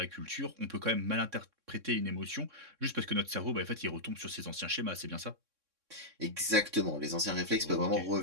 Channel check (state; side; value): late; left; 3.6 ms